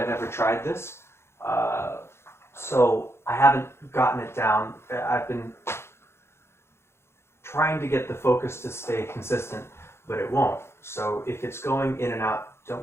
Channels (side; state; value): right; late; 0.12 ms